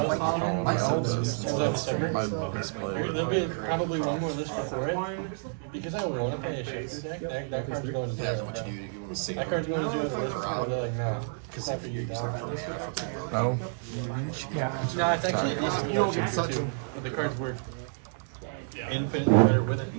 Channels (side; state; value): left; silent; digital silence